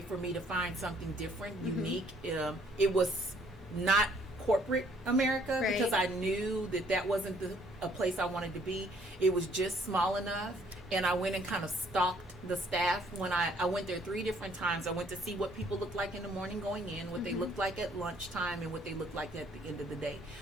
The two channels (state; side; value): normal; both; correlation 0.63